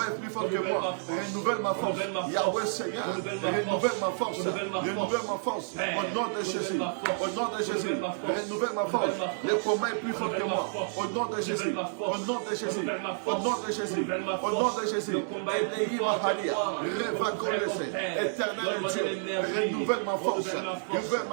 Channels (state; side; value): silent; left; digital silence